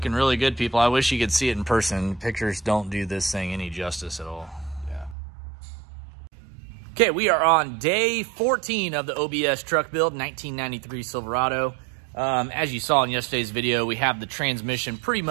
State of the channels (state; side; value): drops out; left; at 5.2 s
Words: really good, people. I wish you could see it in person. Pictures don't do this thing any justice at all. Okay, we are on day 14 of the OBS truck build, 1993 Silverado. As you saw in yesterday's video, we have the transmission pretty